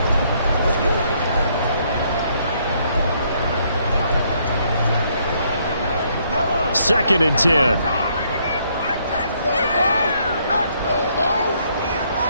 Second and 10.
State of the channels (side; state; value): both; inverted; correlation -0.69